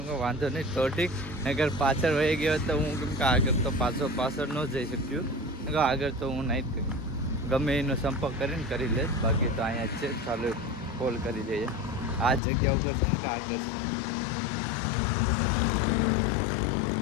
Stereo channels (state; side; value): drops out; right; at 12.4 s